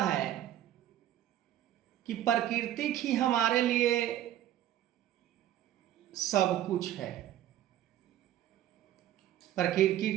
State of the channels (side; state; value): left; quieter; 12.4 dB